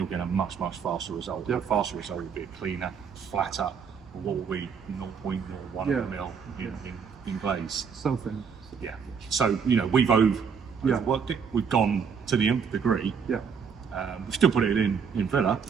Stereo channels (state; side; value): quieter; left; 6.5 dB